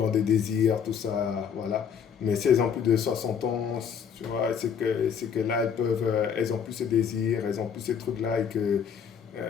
des désirs, tout ça, voilà. Mais si elles ont plus de 60 ans, tu vois, c'est que là, elles ont plus ce désir, elles ont plus ces trucs-là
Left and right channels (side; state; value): right; quieter; 7.2 dB